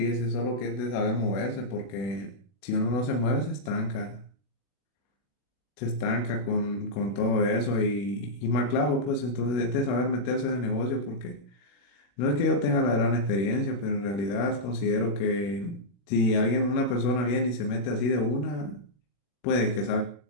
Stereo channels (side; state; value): right; late; 40 ms